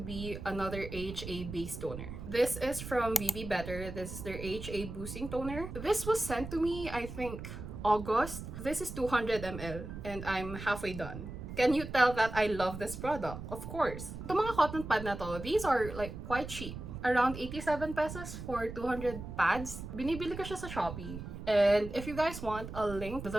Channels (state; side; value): noise; right; rumble, 9 dB below the sound